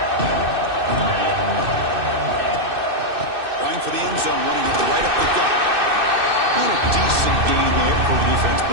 Going for the end zone, running it right up the gut. And a decent gain there before the defense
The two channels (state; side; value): late; left; 2.6 ms